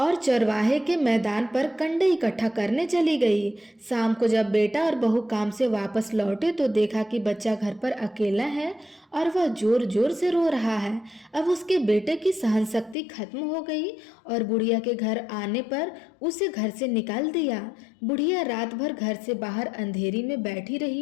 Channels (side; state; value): right; drops out; at 13.0 s